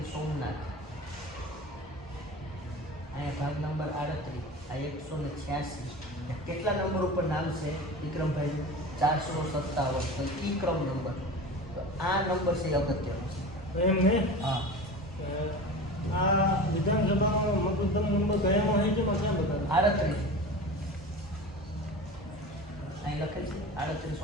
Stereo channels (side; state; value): both; normal; correlation 0.33